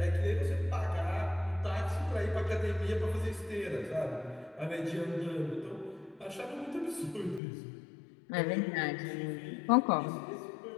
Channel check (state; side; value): drops out; right; at 7.4 s